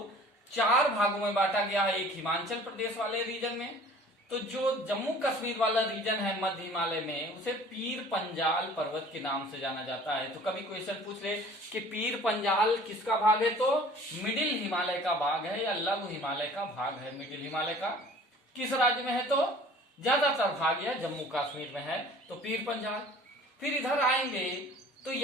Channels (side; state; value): both; normal; correlation 0.48